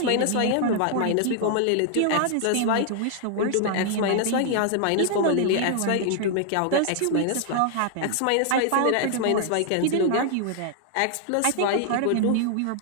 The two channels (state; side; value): different; both; correlation 0.00